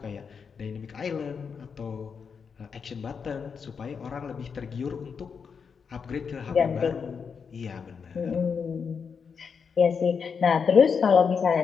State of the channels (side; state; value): right; quieter; 6.1 dB